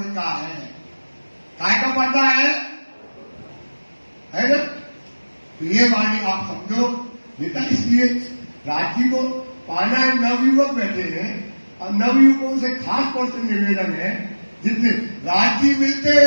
का है। काय का पर्दा है ना? तो ये वाणी आप समझो बेटा। इसलिए राजी को पाना है। नवयुवक बैठे हैं और नवयुवकों से खास तौर से निवेदन है, जितने राजी मिलते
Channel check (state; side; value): inverted; both; correlation -1.00